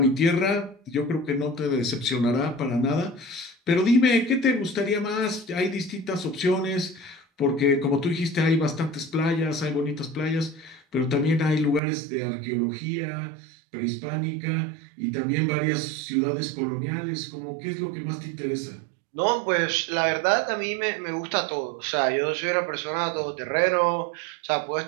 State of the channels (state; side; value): drops out; left; at 11.8 s